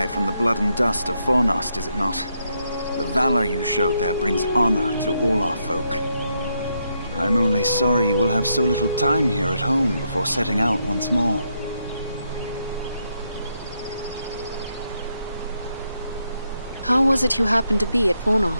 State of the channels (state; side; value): inverted; both; correlation -0.79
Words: from the blood and dust of Fornost, is it not? The valor you showed there brings honor to all our folk. I'm only sorry you will have so little time here at home before setting out once more. How was it you happened to be at